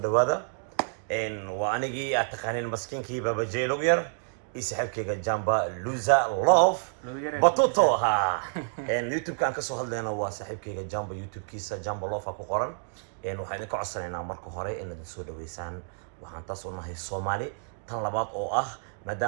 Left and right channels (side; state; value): left; silent; digital silence